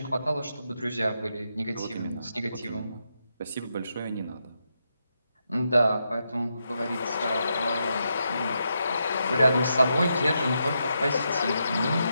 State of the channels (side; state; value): both; inverted; correlation -0.83